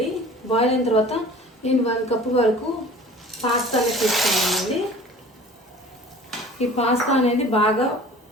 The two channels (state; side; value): normal; both; correlation 0.44